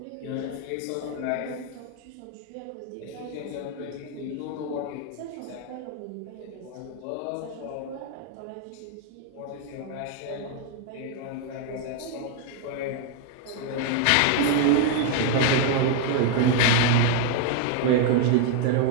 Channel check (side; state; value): both; different; correlation 0.01